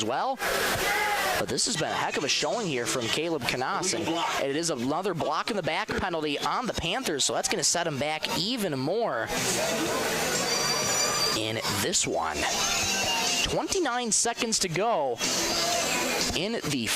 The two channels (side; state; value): both; identical; correlation 1.00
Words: well. But this has been a heck of a showing here from Caleb Canas. And it is another block in the back penalty on the Panthers, so that's going to set him back even more in this one. 29 seconds to go in the